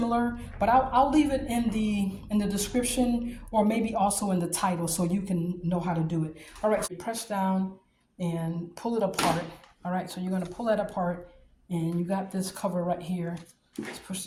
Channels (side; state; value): both; identical; correlation 1.00